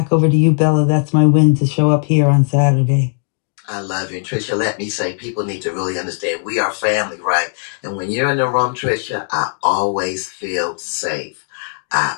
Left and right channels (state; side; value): silent; right; 66 dB below the other